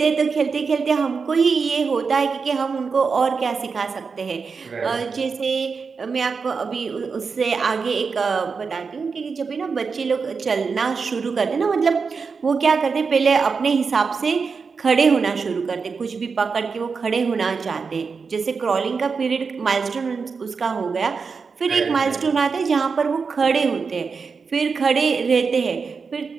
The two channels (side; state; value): left; quieter; 5.2 dB